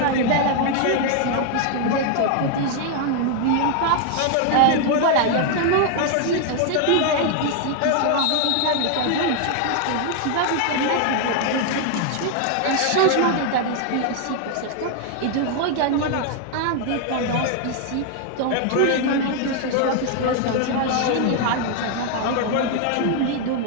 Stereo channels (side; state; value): both; different; correlation 0.00